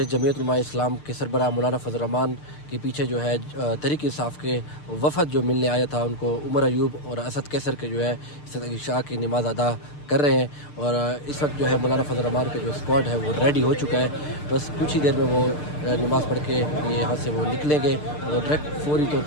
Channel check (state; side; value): late; right; 6.7 ms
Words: جمعیت علماء اسلام کے سربراہ مولانا فضل الرحمان کے پیچھے جو ہے تحریک انصاف کے وفد جو ملنے آیا تھا ان کو عمر ایوب اور اسد کیسر کے جو ہے عشاء کی نماز ادا کر رہے ہیں، اور اس وقت جو ہے مولانا فضل الرحمان کا جو اسکواڈ ہے وہ ریڈی ہو چکا ہے، بس کچھ ہی دیر میں وہ نماز پڑھ کے یہاں سے وہ نکلیں گے اور ڈائریکٹ فوری طور